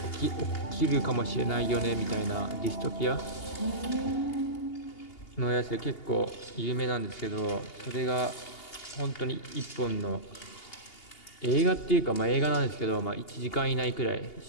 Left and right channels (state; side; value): late; right; 2.8 ms